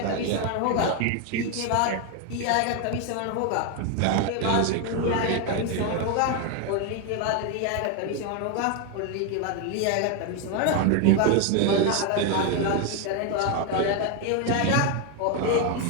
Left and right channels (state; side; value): different; both; correlation 0.01